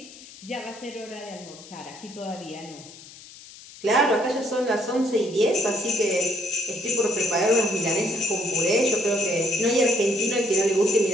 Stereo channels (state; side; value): noise; left; hiss, 19 dB below the sound